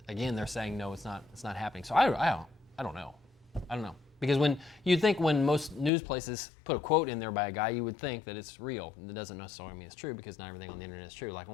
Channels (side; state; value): right; drops out; at 5.9 s